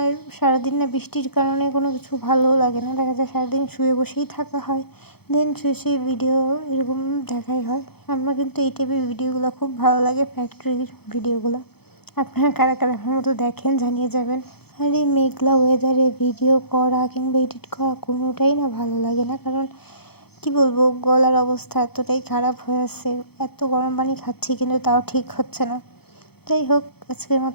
সারাদিন না বৃষ্টির কারণে কোনো কিছু ভালোও লাগে না। দেখা যায় সারাদিন শুয়ে বসেই থাকা হয়, শুয়ে শুয়ে ভিডিও এরকম দেখাই হয়। আমার কিন্তু এই টাইপের ভিডিওগুলো খুব ভালো লাগে, ফ্যাক্টরির ভিডিওগুলো। আপনারা কারা কারা আমার মতো দেখেন জানিয়ে যাবেন। আর এই মেঘলা ওয়েদারে ভিডিও করা কিংবা এডিট করা কোনোটাই না ভালো লাগে না, কারণ কি বলবো, গলার অবস্থা এতটাই খারাপ হয়ে আছে। এত গরম পানি খাচ্ছি কিন্তু তাও ঠিক হচ্ছে না। যাই হোক, আজকের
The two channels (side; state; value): right; late; 0.96 ms